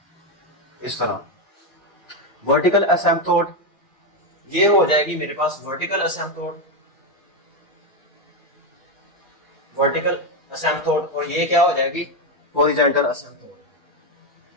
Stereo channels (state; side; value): normal; both; correlation 0.07